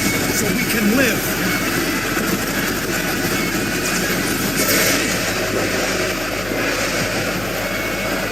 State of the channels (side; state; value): left; noise; hum, 13 dB below the sound